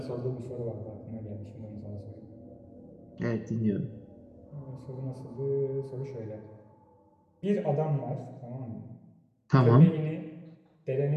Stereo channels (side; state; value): both; identical; correlation 1.00